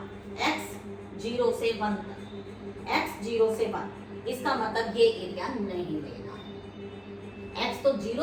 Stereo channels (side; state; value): both; identical; correlation 1.00